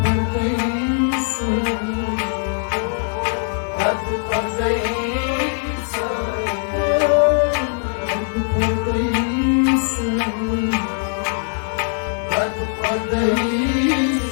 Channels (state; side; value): silent; right; 56 dB below the other